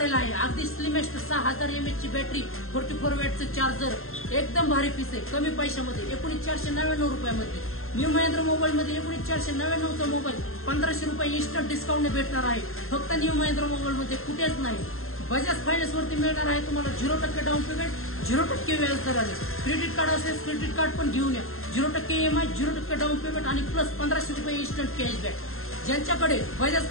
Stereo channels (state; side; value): late; right; 0.61 ms